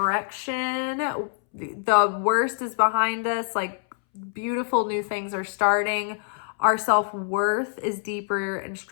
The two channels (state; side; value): silent; right; 61 dB below the other